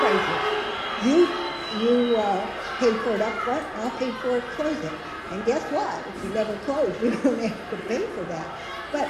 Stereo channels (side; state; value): both; identical; correlation 1.00